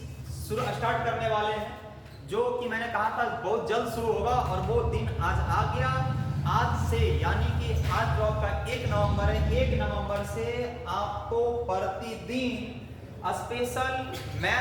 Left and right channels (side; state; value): both; identical; correlation 1.00